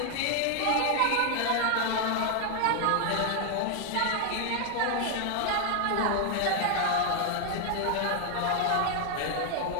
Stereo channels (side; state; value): both; different; correlation 0.00